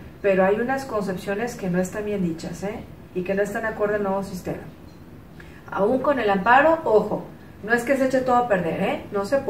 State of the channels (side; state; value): both; identical; correlation 1.00